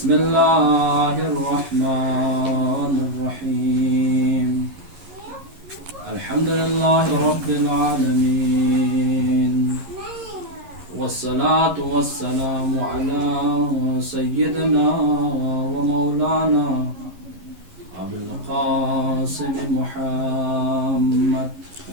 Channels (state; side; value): late; left; 11 ms